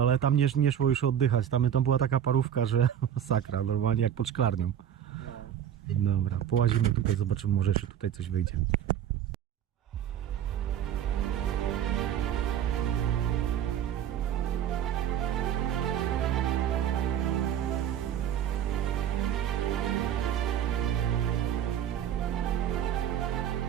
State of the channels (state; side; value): quieter; left; 9.8 dB